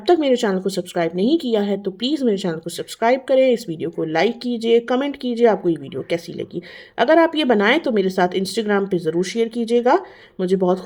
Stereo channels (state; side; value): identical; both; correlation 1.00